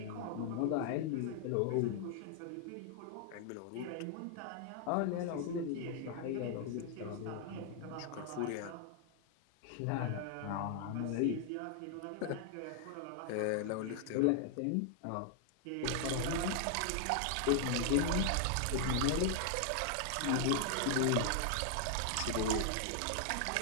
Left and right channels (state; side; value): different; both; correlation 0.00